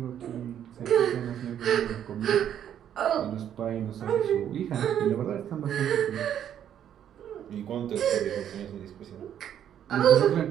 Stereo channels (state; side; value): quieter; left; 9.9 dB